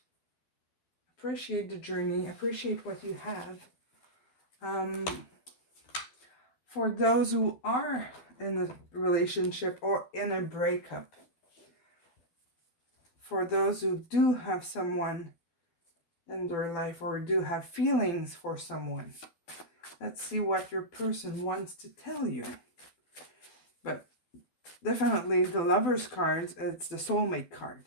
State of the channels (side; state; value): right; late; 12 ms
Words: the journey, appreciate what you have. For those who are in a relationship or in a breakup, for those who do have someone in their life or do have feelings for someone, let's see what your person wants to tell you. But definitely the Lovers cards, it's the soulmate card.